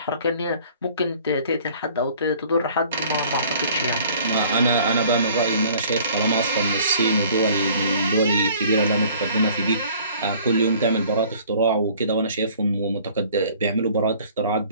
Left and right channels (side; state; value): both; inverted; correlation -0.53